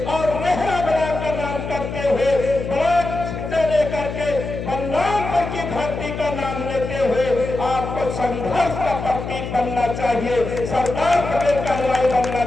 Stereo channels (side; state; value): left; noise; hum, 6 dB below the sound